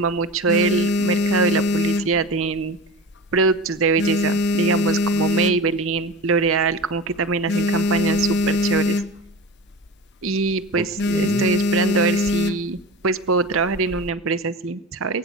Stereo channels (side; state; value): both; normal; correlation 0.30